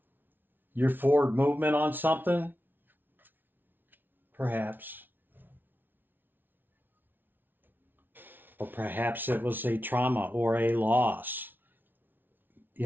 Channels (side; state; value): left; late; 0.093 ms